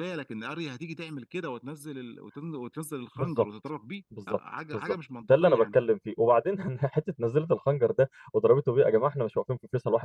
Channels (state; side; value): identical; both; correlation 1.00